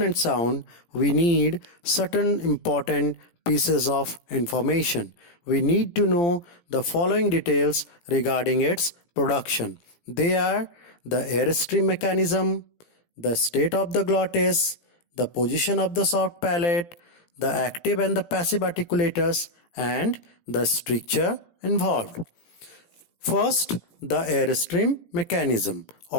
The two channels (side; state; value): right; late; 17 ms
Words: sound, we need certain important pieces of information. We need to know the following details regarding its production. They are the airstream mechanism, the state of the glottis, the position of the soft palate, the active and the passive articulators, and the structure involved. First, the airstream mechanism.